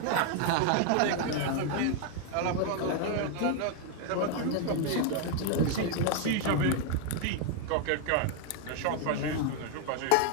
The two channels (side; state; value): both; different; correlation 0.00